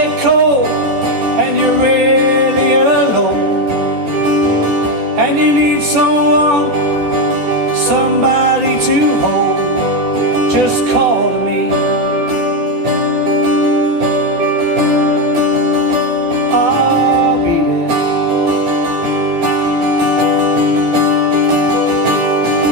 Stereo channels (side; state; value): left; late; 12 ms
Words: cold and you're really alone, and you need someone, somebody to hold, just call to me. I'll be there.